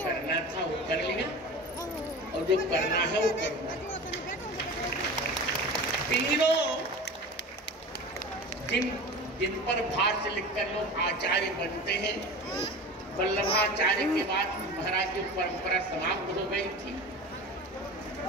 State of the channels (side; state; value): both; normal; correlation 0.33